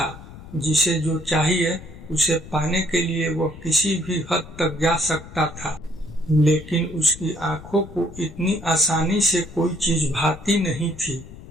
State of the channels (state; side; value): noise; left; rumble, 16 dB below the sound